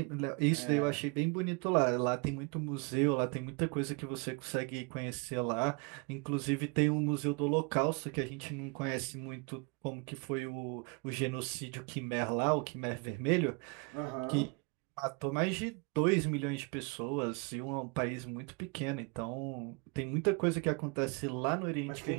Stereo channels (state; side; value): quieter; left; 32.1 dB